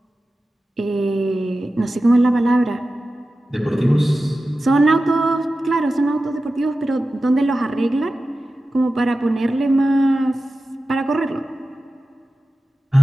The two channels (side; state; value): both; normal; correlation 0.94